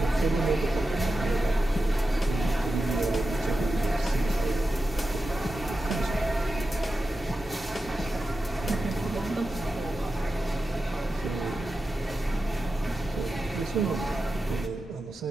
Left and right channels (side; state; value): both; normal; correlation 0.91